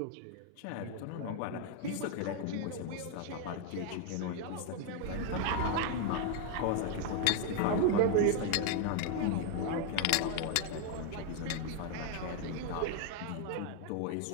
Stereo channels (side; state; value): both; different; correlation 0.00